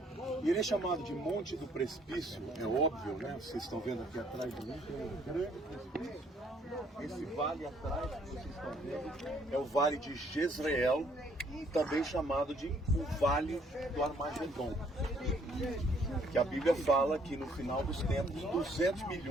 E ele é chamado de Monte do Precipício, é óbvio, né? Vocês estão vendo aqui atrás de mim, tem um grande precipício. Esse vale atrás que vocês estão vendo é o Vale de Jezreel, também chamado de o Vale do Armagedon. Que a Bíblia fala que no final dos tempos, 200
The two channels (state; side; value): normal; both; correlation 0.64